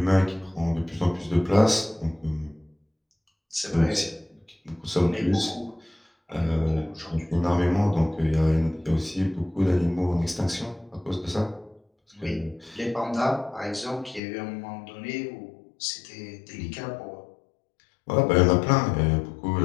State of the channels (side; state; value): right; drops out; at 14.2 s